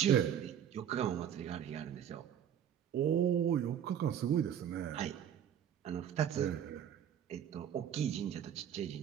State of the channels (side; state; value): left; quieter; 9.4 dB